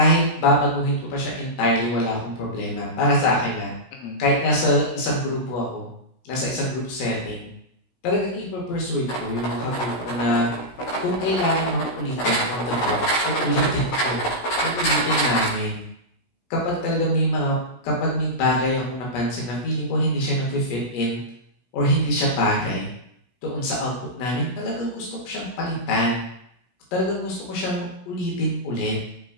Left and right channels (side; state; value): right; late; 16 ms